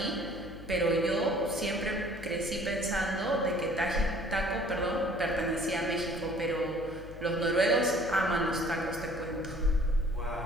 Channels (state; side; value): noise; left; hum, 16 dB below the sound